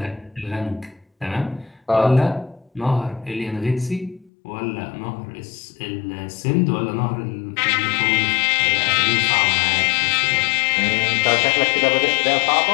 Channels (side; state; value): right; drops out; at 4.3 s